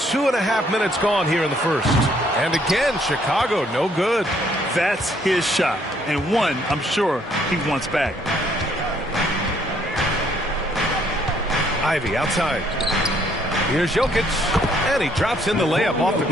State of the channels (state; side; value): normal; both; correlation 0.66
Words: minutes gone here in the first. And again, Chicago, no good. That's his shot. And one, I'm sure, he wants back. Ivey outside. Here's Jokic. And he drops in the layup off the